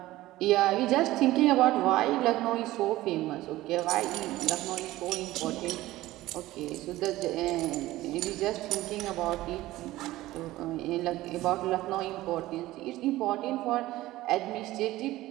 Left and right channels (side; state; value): left; quieter; 16.8 dB